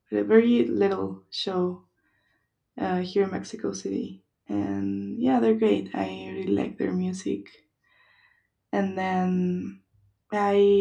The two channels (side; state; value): both; identical; correlation 1.00